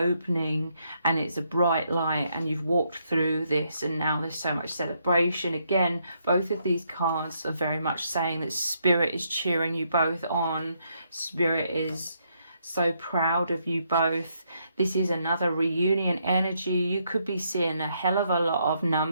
and it's a bright light, and you've walked through this, and now there's so much celebration. Again, both of these cards are very much saying that Spirit is cheering you both on. Spirit is so proud of you both. This is another reunion energy. You could be seeing a hell of a lot of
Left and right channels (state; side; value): inverted; both; correlation -0.75